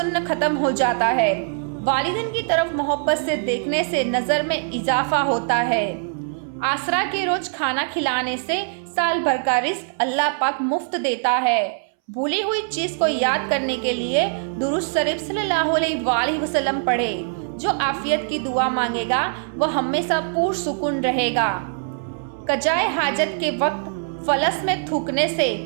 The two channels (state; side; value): silent; left; 63 dB below the other